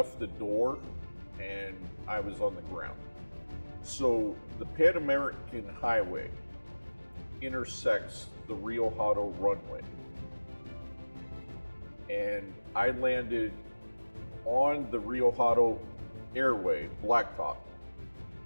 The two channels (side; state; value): both; inverted; correlation -1.00